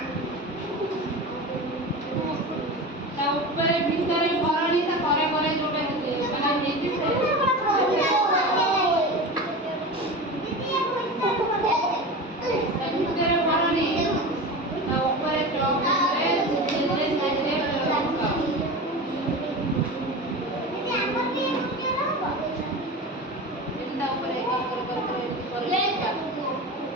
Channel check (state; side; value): normal; both; correlation 0.29